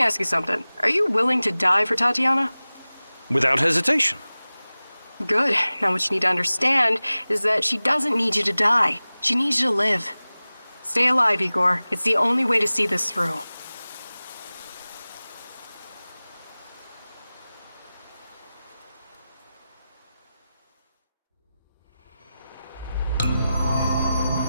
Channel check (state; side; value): inverted; both; correlation -0.97